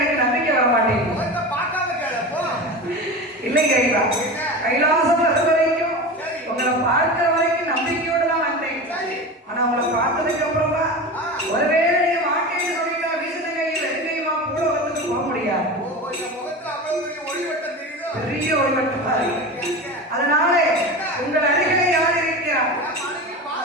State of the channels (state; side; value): normal; both; correlation 0.28